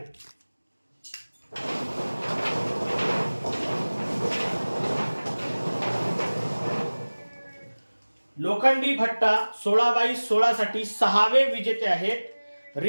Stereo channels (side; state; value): both; inverted; correlation -1.00